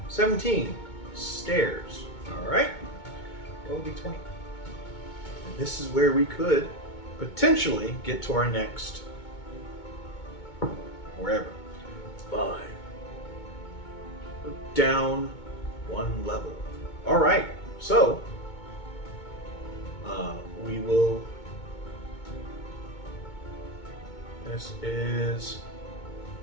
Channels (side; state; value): right; late; 2.2 ms